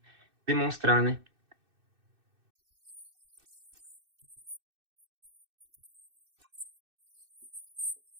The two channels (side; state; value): left; late; 2.6 ms